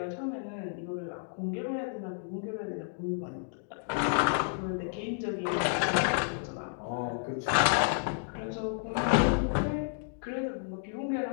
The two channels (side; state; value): right; silent; digital silence